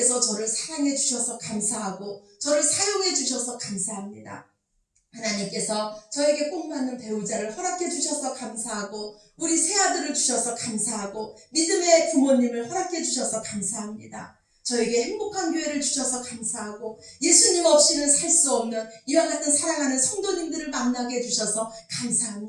저를 사랑해 주셔서 감사하고 저를 사용해 주셔서 감사합니다. 하나님께서 저에게 꼭 맞는 배우자를 허락해 주셔서 감사하고 우리 새아들을 주셔서 감사하고 믿음의 부모님을 허락해 주셔서 감사합니다. 저에게 행복한 교회를 주셔서 감사하고 예수님 없이는 살 수 없는 이와 같은 사랑하는 성도님들을 만나게 해주셔서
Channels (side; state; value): both; identical; correlation 1.00